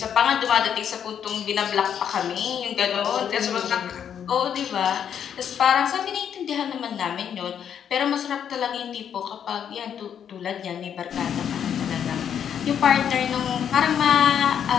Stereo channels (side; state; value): right; quieter; 8.6 dB